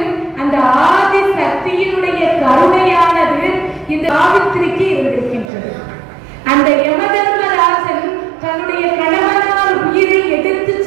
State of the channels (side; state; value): left; drops out; at 5.5 s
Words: அந்த ஆதி சக்தியினுடைய கருணையானது இந்த சாவித்திரிக்கு இருந்திருக்கின்றது. அந்த யமதர்மராஜன் தன்னுடைய கணவனார் உயிரை எடுத்து